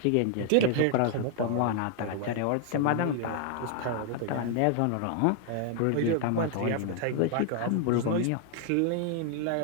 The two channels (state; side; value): different; both; correlation 0.00